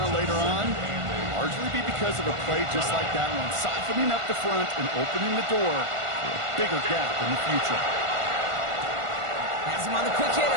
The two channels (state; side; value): late; left; 1.5 ms